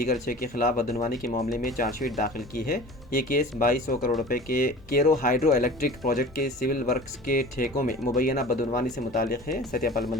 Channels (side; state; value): both; normal; correlation 0.40